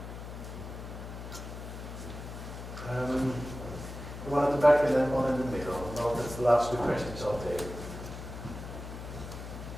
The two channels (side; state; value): left; noise; hum, 10 dB below the sound